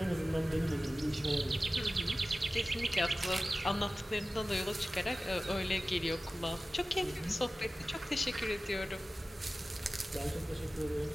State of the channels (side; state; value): both; normal; correlation 0.96